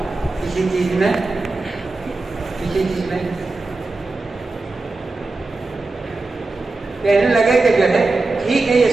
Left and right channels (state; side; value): quieter; left; 3.4 dB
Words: کسی چیز میں کہنے لگے کہ جو ہے ٹھیک ہے یہ